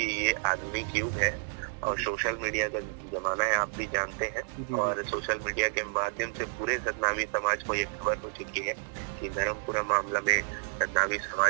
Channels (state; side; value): silent; left; digital silence